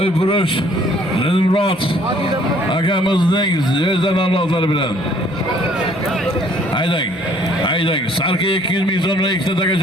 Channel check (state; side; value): normal; both; correlation 0.59